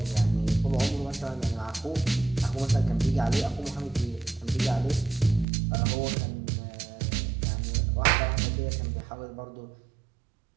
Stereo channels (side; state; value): left; drops out; at 5.5 s